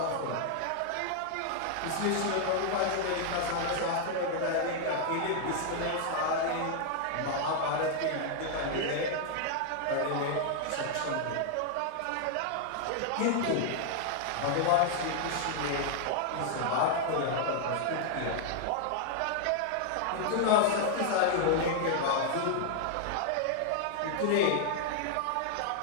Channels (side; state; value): both; different; correlation 0.00